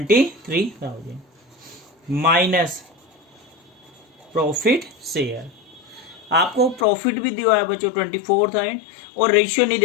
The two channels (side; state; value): right; drops out; at 6.9 s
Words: माइनस प्रॉफिट शेयर। आपको प्रॉफिट भी दिया है बच्चों 24,000, और रेशियो नहीं